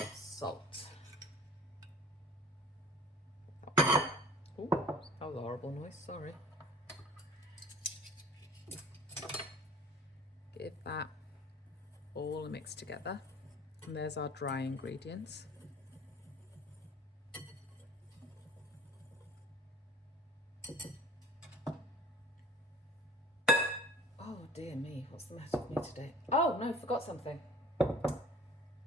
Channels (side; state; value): both; normal; correlation 0.47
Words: salt. Oh, that was a horrible noise, sorry. Give that all mixed together. And there's our dry ingredients. Oh dear me, what's the matter with me today? Oh no, forgot something. Oh,